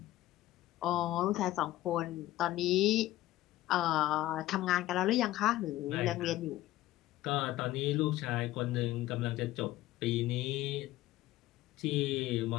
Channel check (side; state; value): right; quieter; 15.6 dB